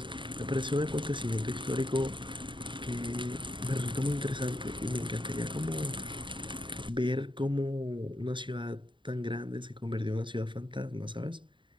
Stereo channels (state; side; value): late; left; 0.23 ms